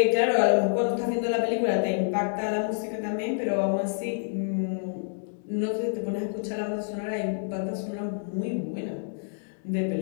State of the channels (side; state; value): right; silent; digital silence